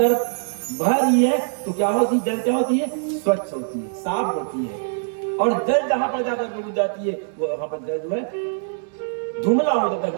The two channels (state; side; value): silent; left; 64 dB below the other